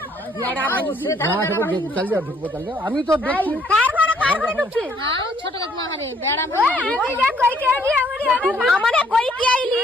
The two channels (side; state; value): both; normal; correlation 0.65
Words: আমি তো দেখছি ছোট কাকিমা ঘরে বেড়া